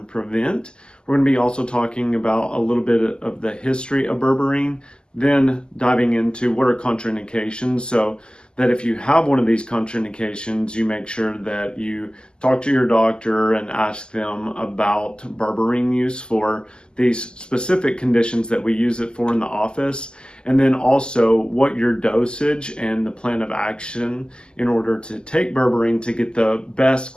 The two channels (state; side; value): late; right; 0.047 ms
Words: We're going to be also talking about a little bit of the history of berberine, then diving into what are contraindications, so that if you have one of these contraindications, you make sure that you talk to your doctor and ask them about berberine use for these specific conditions that we use it for in the office, and then also what your dosage and the plan of action in order to take berberine to get the best